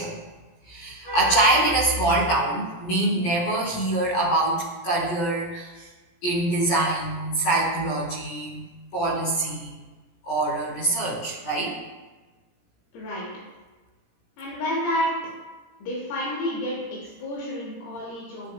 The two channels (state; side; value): late; right; 17 ms